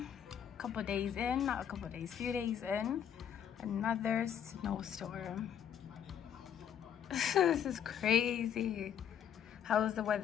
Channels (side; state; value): right; quieter; 9.0 dB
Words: a couple days in, not a couple days, few days in, another snowstorm. This is crazy. How is the